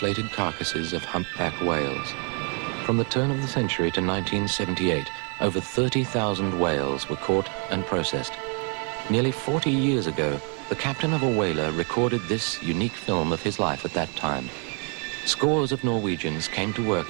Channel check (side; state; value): left; quieter; 37.8 dB